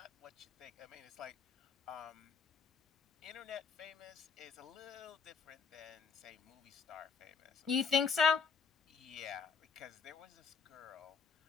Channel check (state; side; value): quieter; right; 5.7 dB